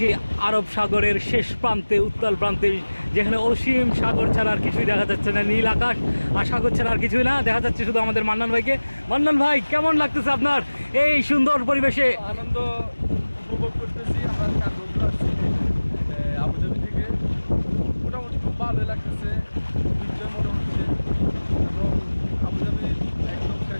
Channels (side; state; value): both; inverted; correlation -1.00